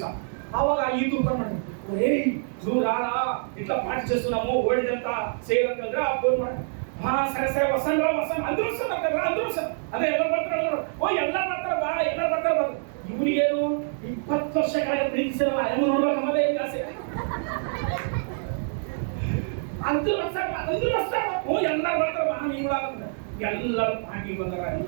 ಅವಾಗ ಈ ತೂಕ ಮಾಡಿ ರಾಳ ಇಟ್ಲ ಪಾರ್ಟಿ చేస్తు ನಾವು ಓಡಿದಂತ ಸೇರ್ ಅಂತಂದ್ರೆ ಆ ಫೋನ್ ಮಾಡಿ ಹಾ ಸರಿ ವಸಂತ ಅಂದ್ರು ಸರ್ ಅದೇ ಎಲ್ಲ ಬರ್ತಾರೆ. ಓ ಎಲ್ಲ ಬರ್ತಾರೆ ಬಾ, ಎಲ್ಲ ಬರ್ತಾರೆ ಬಾ. ಇವ್ರಿಗೇನು 20 ವರ್ಷ ಕೆಳಗೆ ಪ್ರೀತಿಸಿರಲ್ಲ, ಹೆಂಗ್ ನೋಡ್ಬೇಕು ನಮ್ಮದೇ ಆಸೆ. ಅಂದ್ರು ಓ ಎಲ್ಲ ಬರ್ತಾರೆ ಬಾ, ನೀವು ಎಲ್ಲರೂ ಪಾರ್ಟಿ ಬಂದಾರ,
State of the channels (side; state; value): left; silent; digital silence